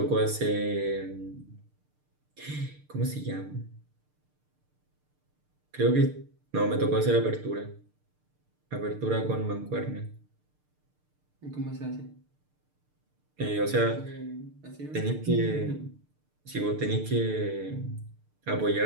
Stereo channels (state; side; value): late; left; 6.7 ms